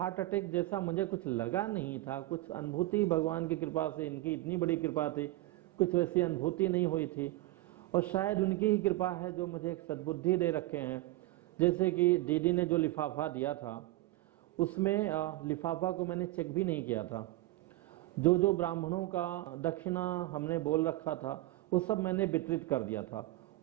अटैक जैसा मुझे कुछ लगा नहीं था, कुछ अनुभूति भगवान की कृपा से, इनकी इतनी बड़ी कृपा थी, कुछ वैसी अनुभूति नहीं हुई थी। और शायद उनकी ही कृपा है जो मुझे एक सद्बुद्धि दे रखे हैं। जैसे कि दीदी ने जो लिफाफा दिया था, उसमें लिफाफा को मैंने चेक भी नहीं किया था। जो जो ब्राह्मणों का दक्षिणा हमने बोल रखा था वो सब मैंने वितरित कर दिया था।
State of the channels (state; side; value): quieter; left; 17.8 dB